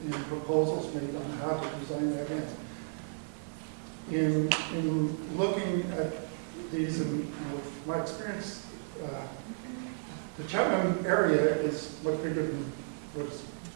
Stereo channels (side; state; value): left; silent; digital silence